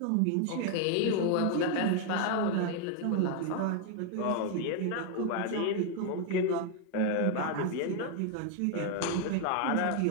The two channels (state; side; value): different; both; correlation 0.00